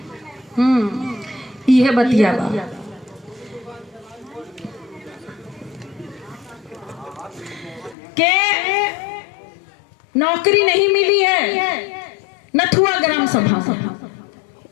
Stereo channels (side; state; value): right; drops out; at 8.0 s